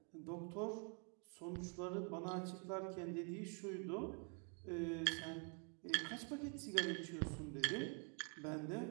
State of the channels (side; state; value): left; quieter; 38.9 dB